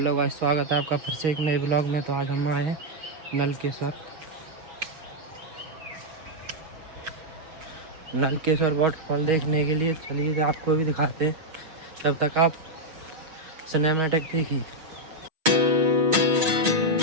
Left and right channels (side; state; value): left; late; 6.4 ms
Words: guys, स्वागत है आपका फिर से एक नए ब्लॉग में। तो आज हम आए हैं नलकेश्वर वाटरफॉल देखने के लिए। चलिए आपको भी दिखाते हैं, तब तक आप सिनेमैटिक देखिए।